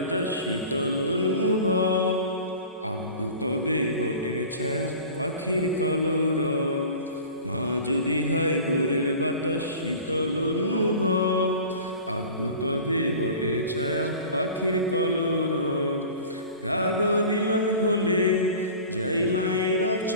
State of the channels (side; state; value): both; inverted; correlation -0.40